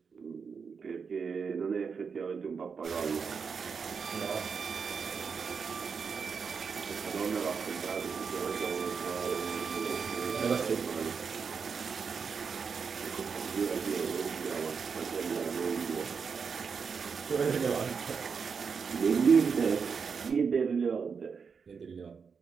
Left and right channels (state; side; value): quieter; left; 5.8 dB